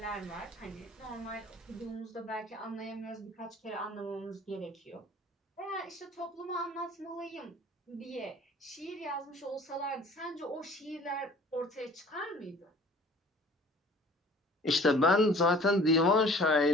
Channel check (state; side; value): normal; both; correlation 0.50